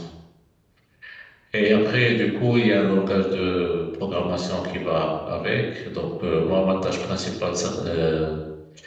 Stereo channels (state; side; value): identical; both; correlation 1.00